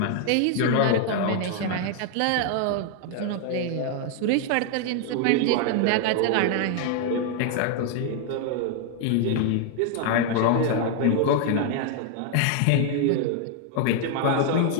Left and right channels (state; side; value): different; both; correlation 0.00